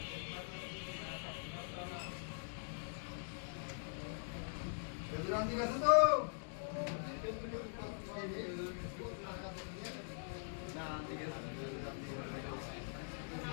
রান্তি গেছে তো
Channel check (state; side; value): silent; right; digital silence